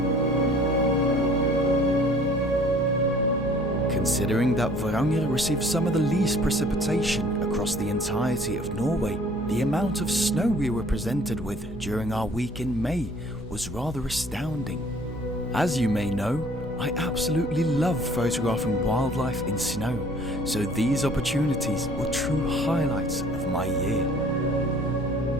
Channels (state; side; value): noise; left; hum, 18 dB below the sound